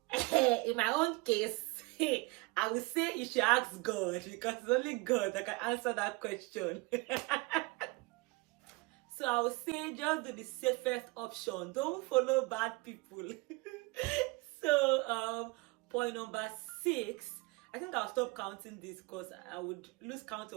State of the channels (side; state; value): left; quieter; 25.1 dB